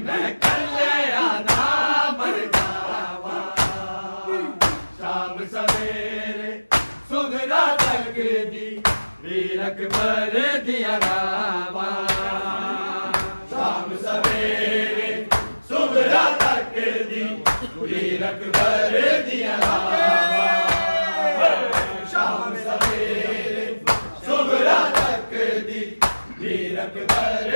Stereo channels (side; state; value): both; inverted; correlation -1.00